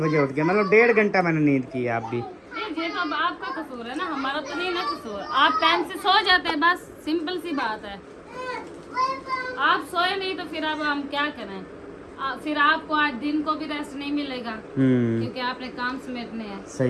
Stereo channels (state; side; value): identical; both; correlation 1.00